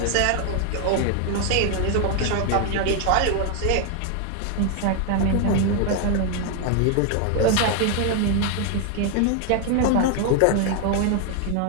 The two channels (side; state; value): both; different; correlation 0.00